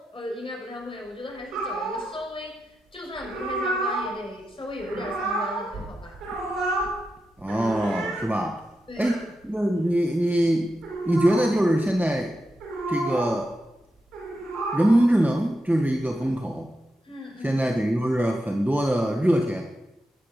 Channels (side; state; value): both; normal; correlation 0.88